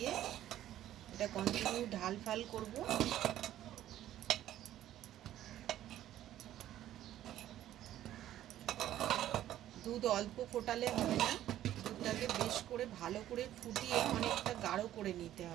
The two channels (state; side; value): quieter; left; 12.7 dB